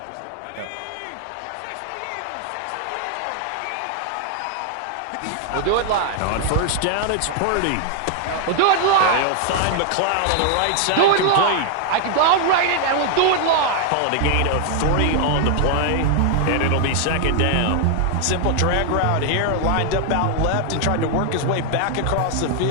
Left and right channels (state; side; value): different; both; correlation 0.00